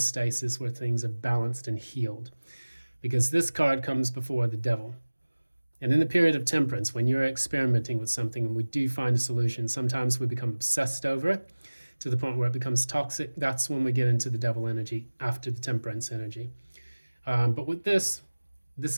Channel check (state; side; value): inverted; both; correlation -1.00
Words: where things are balanced and healed. Because this card comes before the devil. And in the period of temperance, when you're experimenting with something and we do find a solution, sometimes we become obsessed over it to the point where it becomes toxic, that's when we get into the devil energy after the temperance energy. But with this